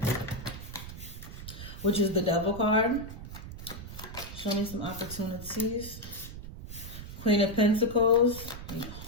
which is the Devil card. Show me some opportunities. Queen of Pentacles.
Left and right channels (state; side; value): noise; right; rumble, 11 dB below the sound